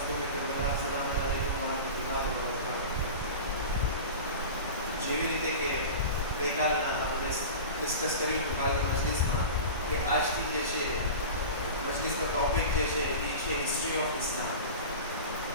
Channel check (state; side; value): inverted; both; correlation -0.32